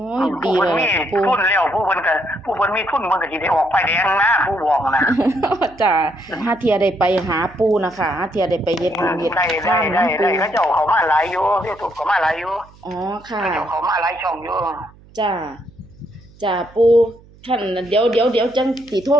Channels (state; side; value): noise; right; hum, 25 dB below the sound